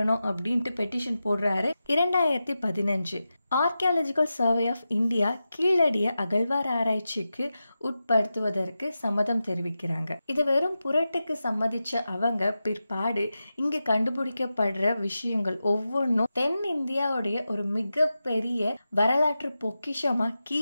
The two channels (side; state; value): both; inverted; correlation -0.92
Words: அப்படின்ட்டு பெட்டிஷன் போடுறாரு. 2015 ஆர்கியாலஜிக்கல் சர்வே ஆஃப் இந்தியா கீழடிய அகழ்வார் ஆராய்ச்சிக்கு உட்படுத்துவதற்கு சம்மதம் தெரிவிக்கிறாங்க. இதை வெறும் புரட்டுக்கு சம்மதிச்ச அவங்க பிற்பாடு இங்க கண்டுபிடிக்கப்படுற விஷயங்கள் ஒவ்வொன்றும் தென் இந்தியாவுடைய ஒரு மிகப்பெரிய வரலாற்று பொக்கிஷமா